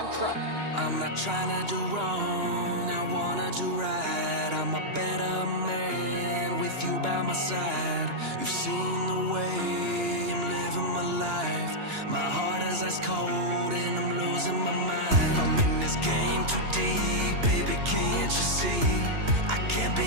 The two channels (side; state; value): left; late; 2.9 ms